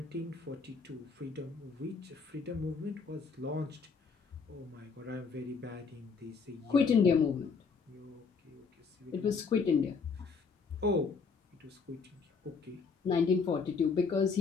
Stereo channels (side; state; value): right; quieter; 5.1 dB